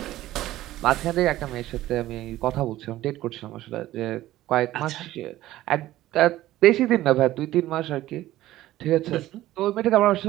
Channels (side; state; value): left; quieter; 15.1 dB